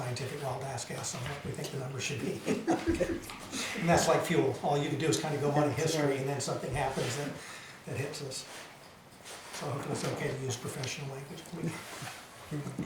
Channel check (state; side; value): identical; both; correlation 1.00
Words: wild ass guess on what we think the number should be. And that's like fuel. All you can do is kind of go on in history, and then something happens that hits us. So hopefully it's okay to use professional language. Do